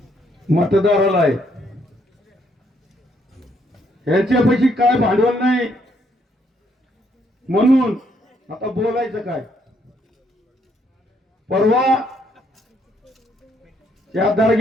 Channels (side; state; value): both; normal; correlation 0.71